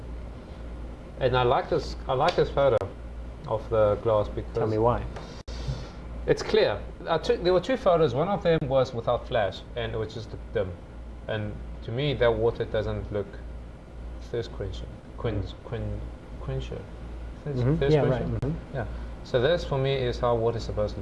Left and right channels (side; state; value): both; identical; correlation 1.00